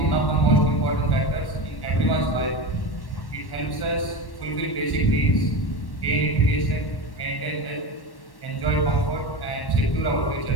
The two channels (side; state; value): right; late; 1.1 ms